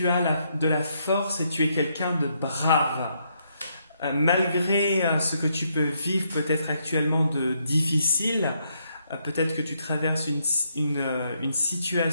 as de la force et tu es quelqu'un de brave. Malgré ce que tu peux vivre peut-être actuellement de difficile, peut-être que tu traverses une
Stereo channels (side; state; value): both; inverted; correlation -0.76